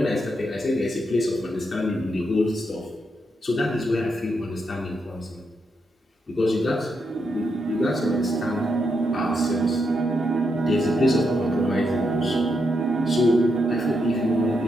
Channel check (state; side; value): normal; both; correlation 0.81